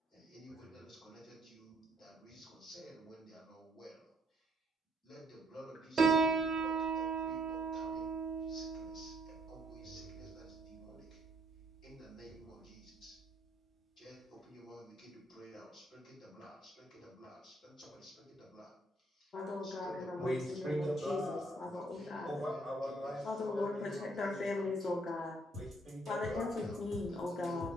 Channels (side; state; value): both; normal; correlation 0.68